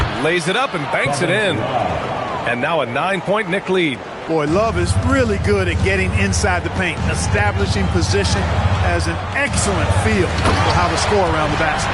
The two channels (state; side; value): identical; both; correlation 1.00